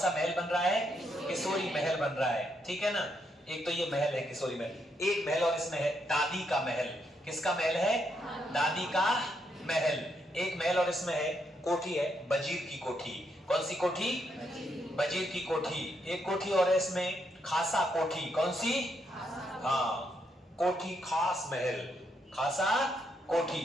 महल बन रहा है? किशोरी महल बन रहा है। ठीक है ना? एक तो ये महल है किशोरी महल। एक महल और इसमें है दादी का महल। किसका महल है? दादी का महल। एक महल और इसमें है कोठी, है वजीर की कोठी। कौन सी कोठी? वजीर की कोठी। एक कोठी और है इसमें खासा कोठी। कौन सी? हाँ, कोठी खास महल, खासा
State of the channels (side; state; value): both; normal; correlation 0.77